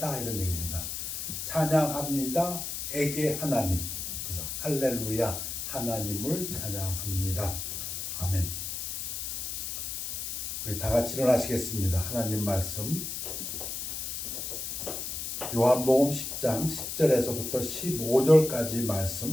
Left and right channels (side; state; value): left; noise; hiss, 4 dB below the sound